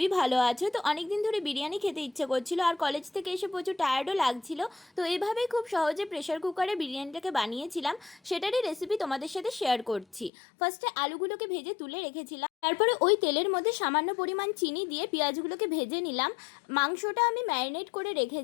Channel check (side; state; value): right; drops out; at 10.3 s